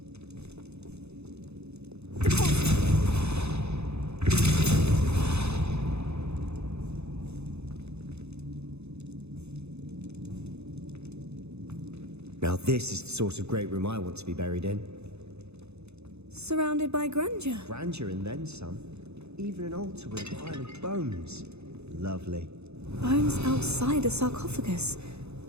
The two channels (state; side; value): late; left; 0.80 ms